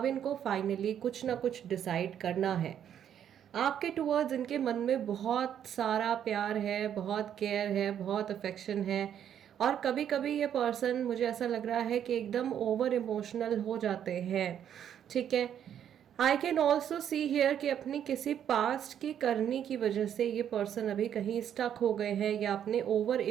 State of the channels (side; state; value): left; quieter; 9.5 dB